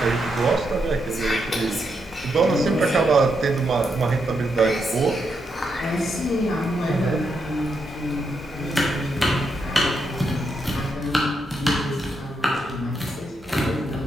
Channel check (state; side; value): normal; both; correlation 0.81